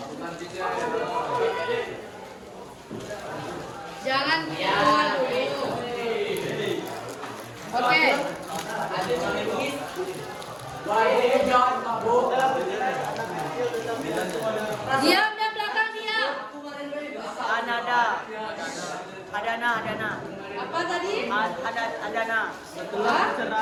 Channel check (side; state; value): both; identical; correlation 1.00